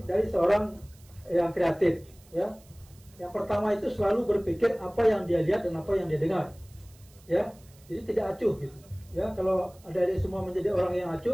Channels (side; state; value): right; noise; hiss, 27 dB below the sound